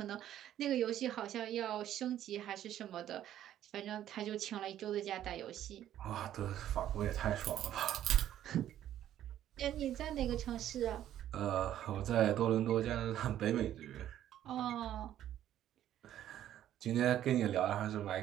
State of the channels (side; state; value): left; quieter; 11.7 dB